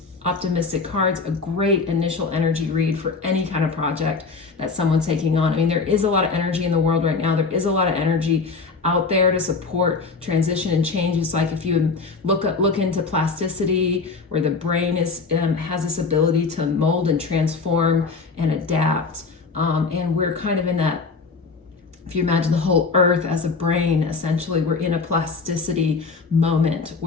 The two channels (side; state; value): right; quieter; 4.5 dB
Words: optimistic cards, a great initial energy read for any kind of project that someone's taking on. I mean, there is a lot of energy in the world right now. There is a lot of energy out there to support transition and change. It's like if you look into plasticity, where the brain is has this ability to mold and transform and adapt, and we're kind of in that. If you imagine the whole earth as a brain, essentially we're in a plasticity moment